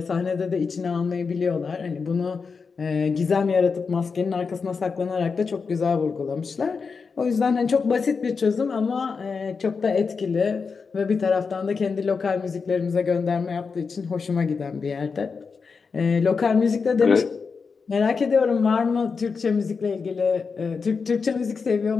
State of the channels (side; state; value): right; quieter; 5.2 dB